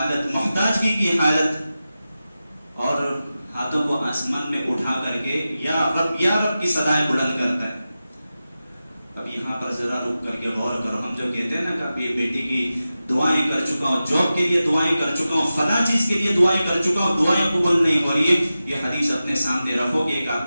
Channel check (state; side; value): inverted; both; correlation -0.93